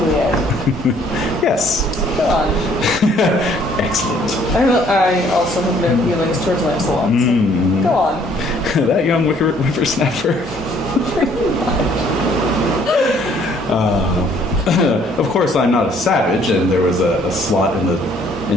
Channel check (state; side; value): normal; both; correlation 0.61